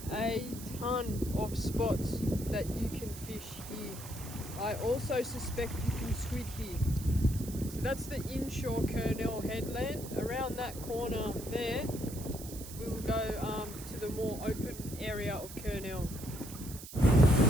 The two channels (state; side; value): noise; right; hiss, 13 dB below the sound